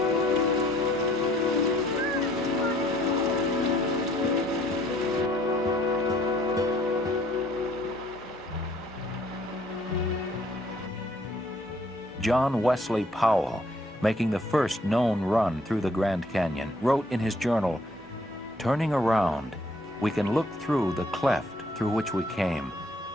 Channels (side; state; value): both; normal; correlation 0.62